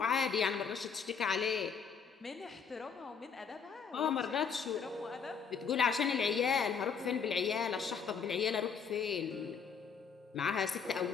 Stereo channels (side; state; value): right; quieter; 6.3 dB